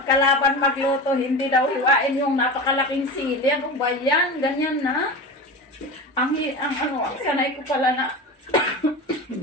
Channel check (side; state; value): both; normal; correlation 0.28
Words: magluto, hindi daw hiwain yung napakalaking sili. Ano ba yan? Ganyan na. Ang sanay ko pala na.